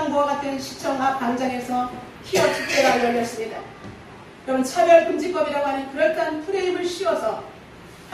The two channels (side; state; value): both; identical; correlation 1.00